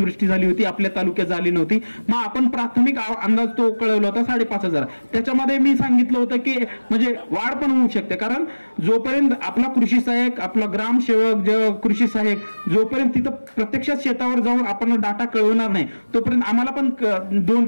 झाली होती, आपल्या तालुक्यात झाली नव्हती. मग आपण प्राथमिक अंदाज तो कळवला होता 5,500. त्याच्यामध्ये मी सांगितलं होतं की म्हणजे वाढ पण होऊ शकते, कारण जोपर्यंत आपला कृषी सहाय्यक, आपला ग्रामसेवक, कृषी सहाय्यक जोपर्यंत तिथं प्रत्यक्षात शेतावर जाऊन आपण डाटा कळवणार नाही तोपर्यंत आम्हाला पण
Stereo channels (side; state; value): both; inverted; correlation -1.00